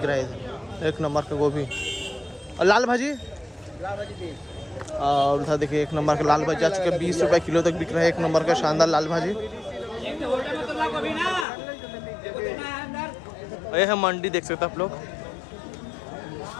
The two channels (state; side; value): drops out; right; at 11.5 s